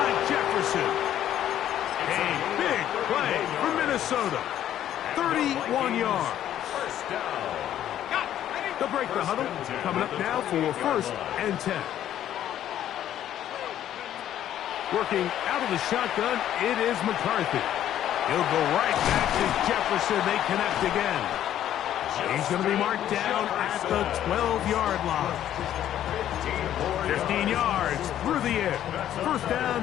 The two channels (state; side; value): quieter; right; 11.4 dB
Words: Jefferson. A big play for Minnesota. 31 yards. First down. They'll break the huddle. Coming up now for first and 10. Working out of the shotgun, it is McCarthy. He'll go right back to Jefferson. They connect again. He's going to be marked down at the 12-yard line. 15 yards through the air. First